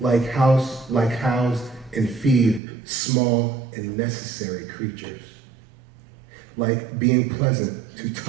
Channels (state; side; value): drops out; left; at 2.6 s